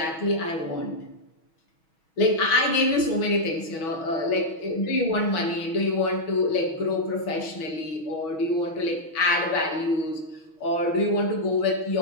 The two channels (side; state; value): right; late; 6.2 ms